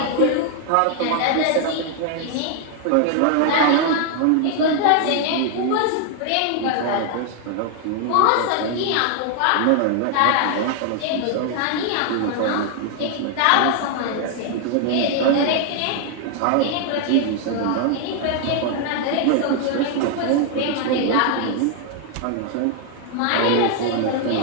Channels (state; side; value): different; both; correlation 0.00